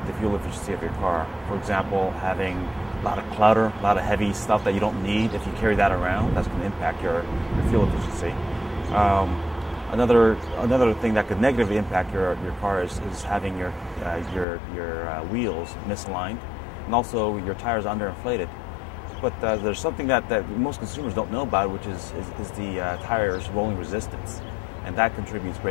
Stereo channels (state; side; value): drops out; right; at 14.5 s